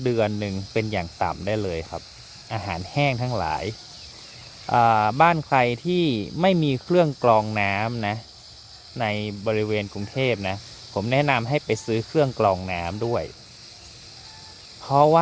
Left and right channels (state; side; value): identical; both; correlation 1.00